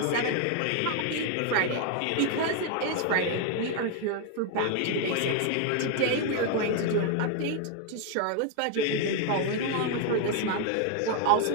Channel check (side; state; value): both; different; correlation 0.01